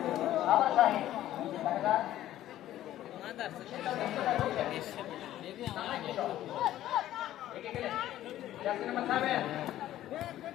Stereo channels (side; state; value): right; quieter; 13.3 dB